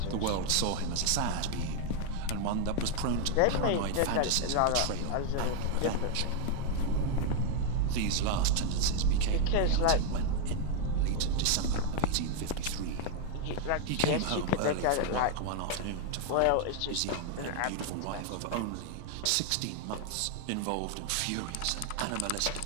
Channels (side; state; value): both; different; correlation 0.01